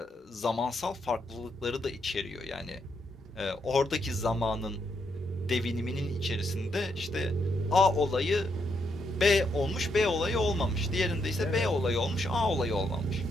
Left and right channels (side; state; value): both; normal; correlation 0.78